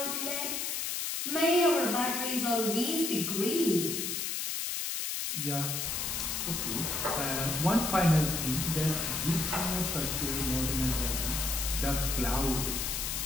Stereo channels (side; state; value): left; noise; hiss, 1 dB below the sound